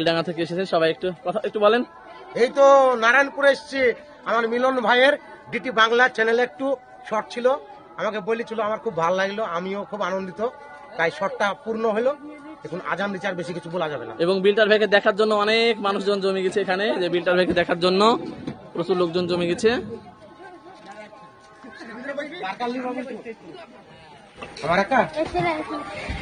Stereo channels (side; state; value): both; identical; correlation 1.00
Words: থেকে এসেছে। সবাই একটু কথা একটু বলেন। এই তো নারায়ণপুরে এসছি, আমার মিলন ভাইয়ের ডিটি বাংলা চ্যানেলে একটু শর্ট ছিল, আমাকে বলেছিল, আমার খুব ভালো লাগলো, আমিও খুব আনন্দিত, তাই শর্টটা পূর্ণ হলো। এখন আজান দিচ্ছে, আর বেশি কিছু বলা যাবে না। এবং বিল্টার ভাইকে দেখার জন্য অনেক মানুষজন জমে গেছে এখানে। যে বিল্টার ভাইকে দেখার জন্য প্রচুর লোকজন জমে গেছে। আমার একা